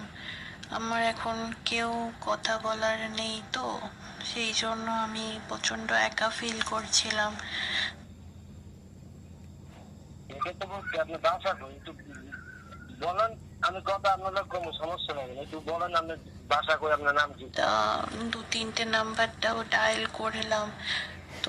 আমার এখন কেউ কথা বলার নেই, তো সেই জন্য আমি প্রচন্ড একা ফিল করছিলাম। এটা তো বলছি আপনি বাসা কই একটু বলেন। আমি কথা আপনার কোনো সমস্যা নেই, একটু বলেন আপনি বাসা কই, আপনার নাম কি? তা 2-3টে নাম্বারটাও ডায়াল করলাম,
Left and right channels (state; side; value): identical; both; correlation 1.00